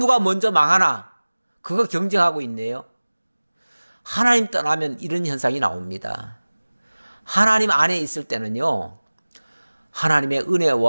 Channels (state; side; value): inverted; both; correlation -1.00